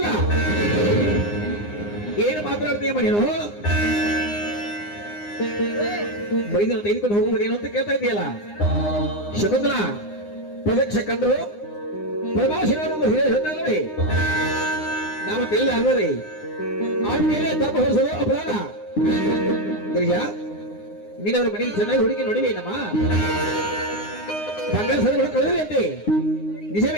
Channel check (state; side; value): late; right; 9.7 ms